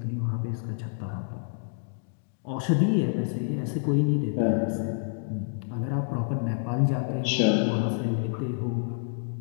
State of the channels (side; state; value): right; silent; digital silence